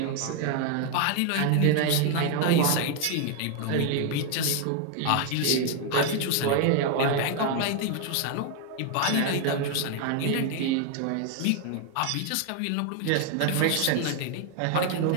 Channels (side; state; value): both; different; correlation 0.01